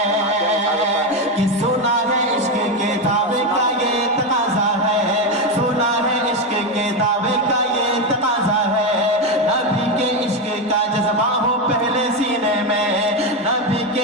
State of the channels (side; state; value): both; normal; correlation 0.11